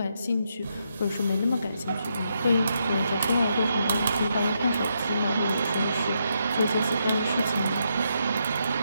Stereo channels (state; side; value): inverted; both; correlation -0.80